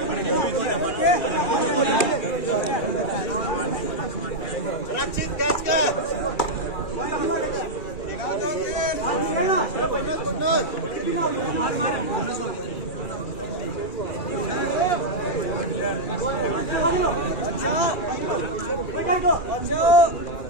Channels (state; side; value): late; right; 2.4 ms